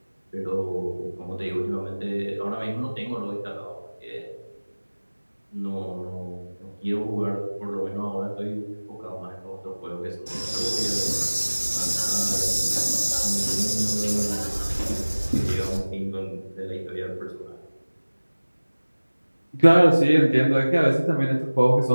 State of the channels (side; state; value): both; inverted; correlation -1.00